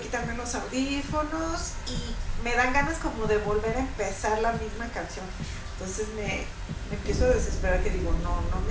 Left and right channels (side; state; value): both; identical; correlation 1.00